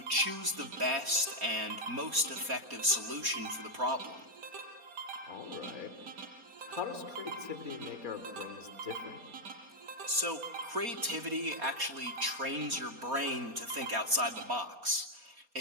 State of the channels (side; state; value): left; late; 4.2 ms